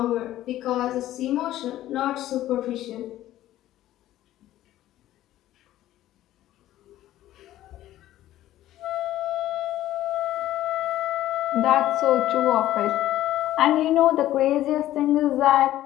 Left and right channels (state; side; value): quieter; right; 13.9 dB